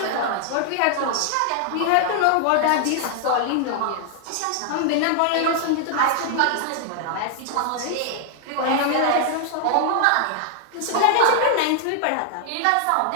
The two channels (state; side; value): different; both; correlation 0.00